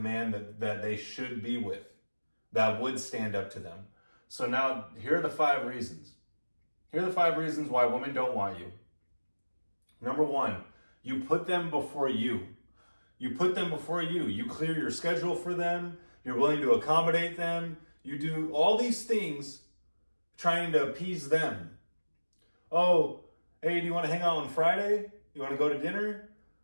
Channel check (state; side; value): inverted; both; correlation -1.00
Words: that they should be with, that would stand up to them. So now, here are the 5 reasons. Here are the 5 reasons why women don't want you. Number 1, you put them before you. You put them before you. You clear your schedule for them. You're willing to accommodate them. You do all these things trying to appease them. Oh, hey, do you want to hang out on Friday? You want to go to dinner?